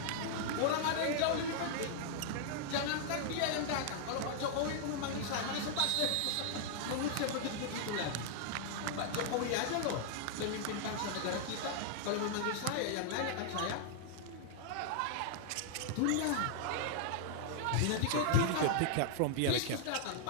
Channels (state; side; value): different; both; correlation -0.01